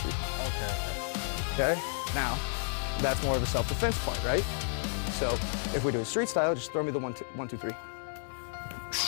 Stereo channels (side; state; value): right; silent; digital silence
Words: Okay, okay. Okay? Now, that's more of the self-defense point, right? So if we do a street style, just throw me the 1, 2, 3.